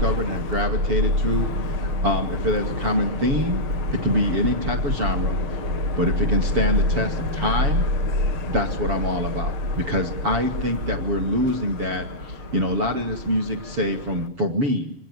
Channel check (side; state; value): left; late; 7.1 ms